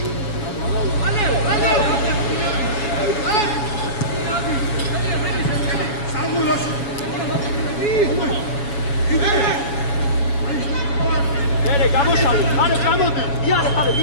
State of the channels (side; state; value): right; late; 7.1 ms